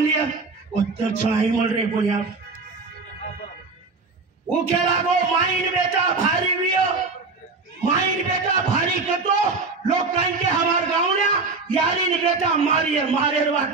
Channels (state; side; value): quieter; left; 4.1 dB